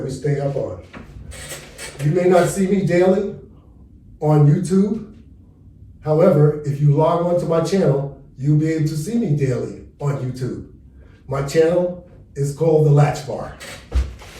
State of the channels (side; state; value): both; identical; correlation 1.00